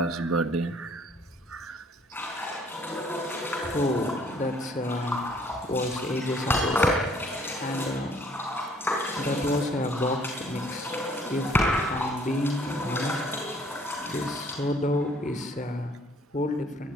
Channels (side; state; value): both; normal; correlation 0.60